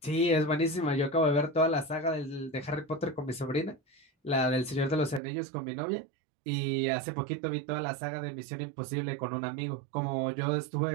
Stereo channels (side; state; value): left; drops out; at 5.2 s